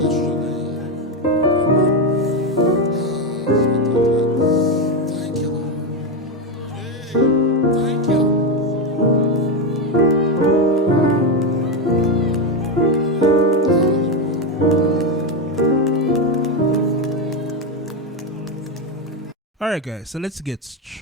Alright guys, so let's get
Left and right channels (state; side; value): normal; both; correlation 0.09